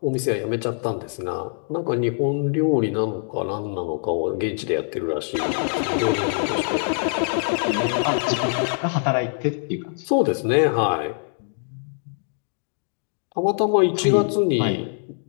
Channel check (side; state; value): right; silent; 62 dB below the other